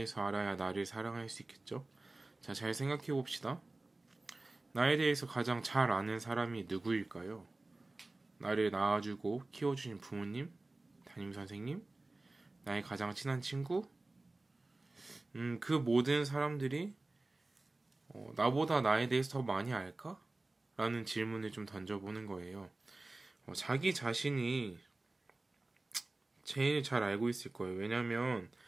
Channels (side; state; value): left; quieter; 3.0 dB